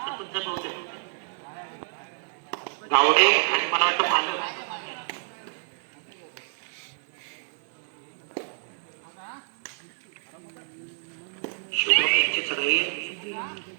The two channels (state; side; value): silent; left; digital silence